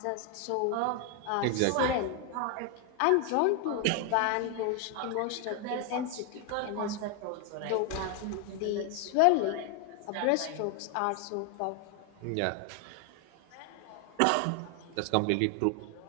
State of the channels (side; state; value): both; different; correlation 0.01